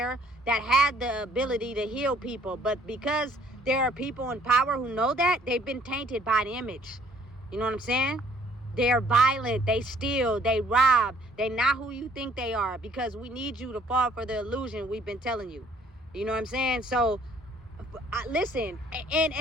that had the ability to heal people. But because there are people in power who know that, they've been tainted by the image. You know what I'm saying? They're violent. They steal. They rob. They're not who you think they are, because we need you to fall for the illusion we've been telling you. You know what I'm saying? So, listen. And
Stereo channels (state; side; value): normal; both; correlation 0.61